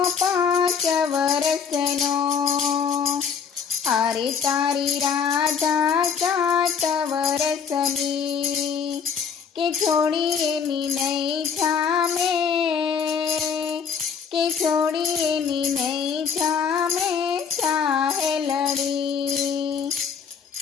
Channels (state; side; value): quieter; right; 6.4 dB